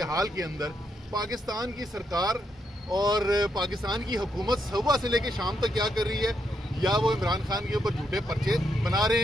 हाल के अंदर पाकिस्तान की सरकार और पाकिस्तान की हुकूमत सुबह से लेकर शाम तक क्या कर रही है? या वो इमरान खान के ऊपर झूठे पर्चे बना रहे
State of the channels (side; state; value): both; normal; correlation 0.79